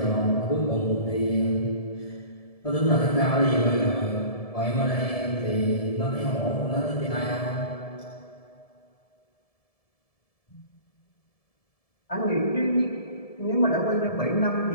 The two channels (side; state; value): right; late; 1.7 ms